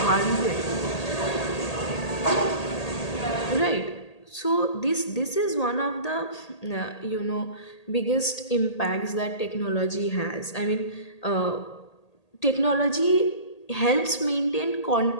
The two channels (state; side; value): late; right; 1.8 ms